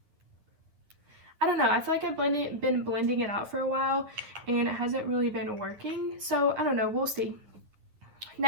I don't know, I feel like I've been blending it out for a while and it hasn't really been working. So I don't know, we'll see.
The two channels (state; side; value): late; left; 9.7 ms